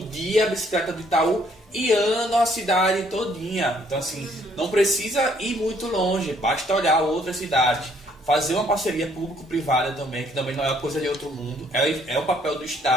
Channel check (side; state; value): both; normal; correlation 0.65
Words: a bicicleta do Itaú e andam a cidade todinha. Então assim, não precisa ir muito longe, basta olhar outras cidades. Fazer uma parceria público-privada também, que também não é uma coisa de outro mundo, é o papel do